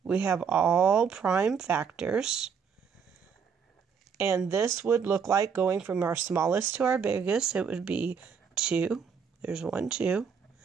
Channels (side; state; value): left; quieter; 6.5 dB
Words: we have all prime factors. And this would look like going from our smallest to our biggest. It would be 2. There's 1, 2.